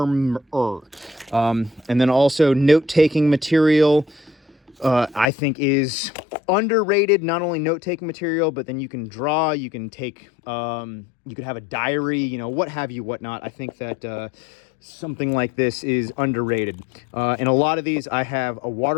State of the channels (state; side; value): drops out; right; at 5.2 s